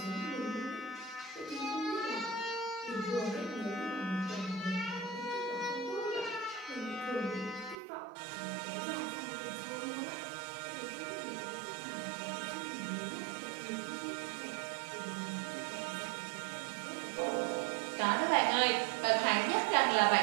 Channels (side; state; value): left; drops out; at 7.8 s